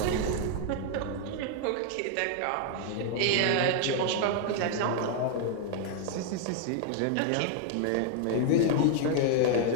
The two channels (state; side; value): different; both; correlation 0.00